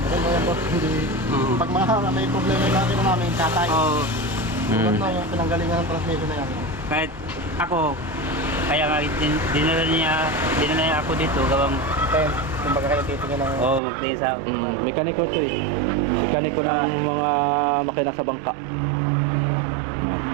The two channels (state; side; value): drops out; left; at 13.8 s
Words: Maganda yan po. Hindi. Pag mga may problema yung natin namin, tatay. Oo. Tulad na yung pinanggalingan ng transmission na yan. Kahit ako, kaya nga dinala niya ako dito gawang Kaya, kumbaga kayo titingin ng... magtingin sa Mekaniko to eh. Mekaniko ng mga makina sa bangka.